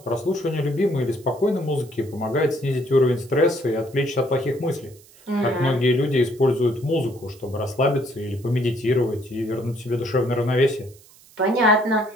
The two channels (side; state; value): right; noise; hiss, 25 dB below the sound